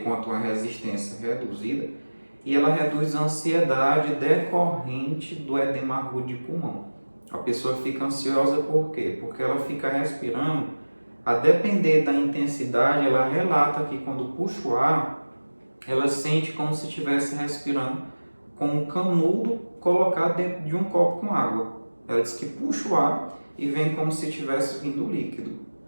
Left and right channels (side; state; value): both; inverted; correlation -1.00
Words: com a tua resistência reduzida e ela reduz a ansiedade decorrente do edema agudo de pulmão. A pessoa fica ansiosa por quê? Porque ela fica respirando, a depender da intensidade, ela relata que quando puxa o ar, ela sente como se estivesse respirando com um canudo colocado dentro de um copo com água. Ela diz que puxa o ar e vem como se tivesse vindo líquido.